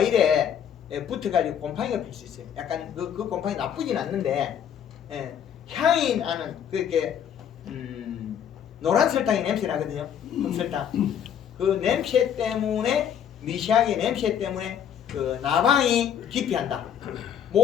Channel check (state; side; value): quieter; right; 8.9 dB